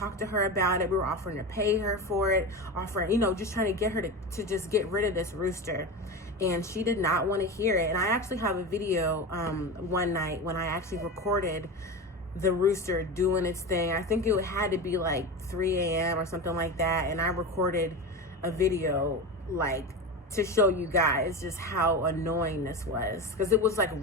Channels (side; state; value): both; normal; correlation 0.25